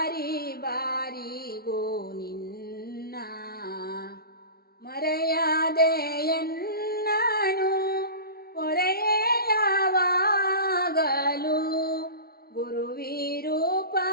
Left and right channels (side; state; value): right; late; 0.44 ms